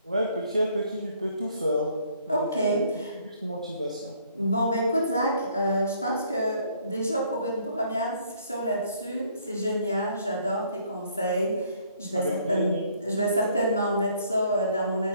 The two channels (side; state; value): both; inverted; correlation -0.63